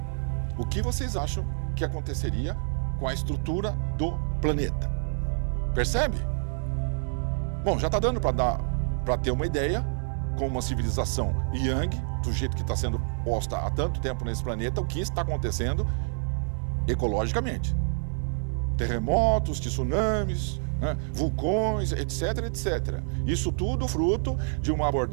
O que vocês acham que aconteceria com a estrutura do planeta? Percebe? Bom, já está dando para ter uma ideia, com uma civilização yang, do jeito que está sendo posta há tanto tempo nesse planeta, o que está acontecendo ecologicamente. Terremotos, tsunamis, né, vulcões, etc. Isso tudo fruto de uma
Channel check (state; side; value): silent; left; digital silence